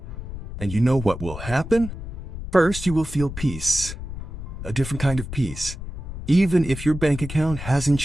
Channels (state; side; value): noise; left; rumble, 9 dB below the sound